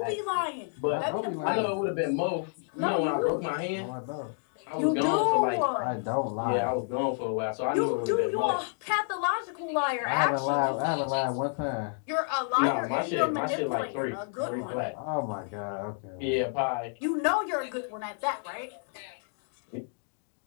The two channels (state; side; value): silent; right; 58 dB below the other